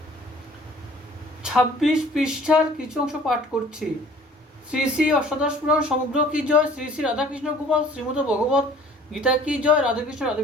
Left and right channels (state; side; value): normal; both; correlation 0.51